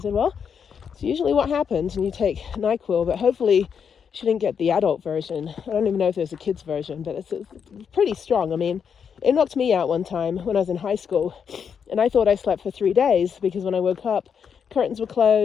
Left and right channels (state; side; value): quieter; right; 7.0 dB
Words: well, it's usually what happens when you take NyQuil, but hopefully she didn't get the adult version. I don't even know if there's a kid's version, but it's pretty strong. I mean, it knocked me out one time when I was in high school, and I thought I slept for 3 days because when I woke up, curtains were